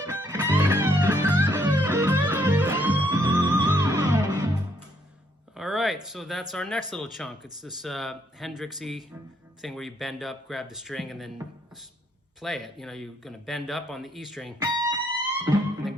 All right, so that's our next little chunk. It's this Hendrix-y thing where you bend up, grab the string, and then play it. You know, you're gonna bend up on the E string, and then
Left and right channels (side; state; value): both; normal; correlation 0.70